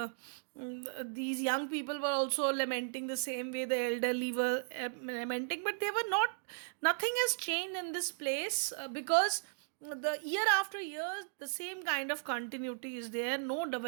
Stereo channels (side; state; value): left; silent; digital silence